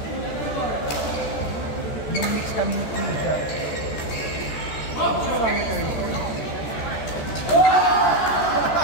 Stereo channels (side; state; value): right; late; 14 ms